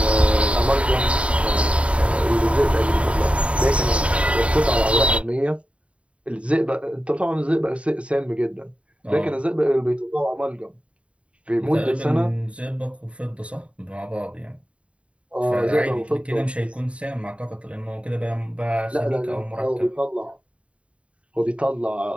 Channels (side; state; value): left; late; 0.062 ms